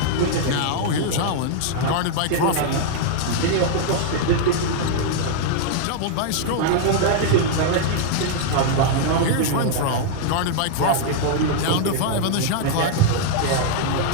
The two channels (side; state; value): both; different; correlation -0.01